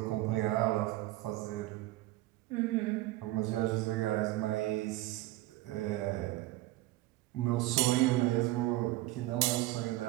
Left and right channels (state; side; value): quieter; left; 17.3 dB